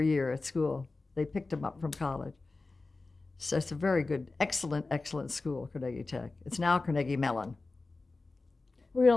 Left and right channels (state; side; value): quieter; right; 3.5 dB